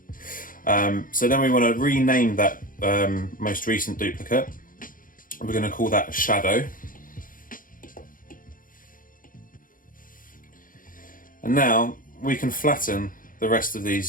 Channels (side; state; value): right; late; 0.40 ms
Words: So then we want to rename that most recent duplicate. We're going to call that shadow. And now we can flatten the rest of